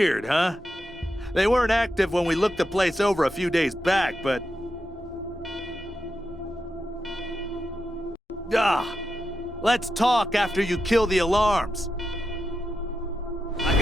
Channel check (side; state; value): both; normal; correlation 0.88